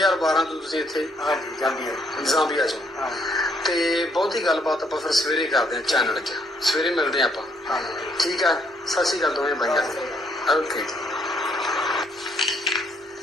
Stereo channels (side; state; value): both; normal; correlation 0.69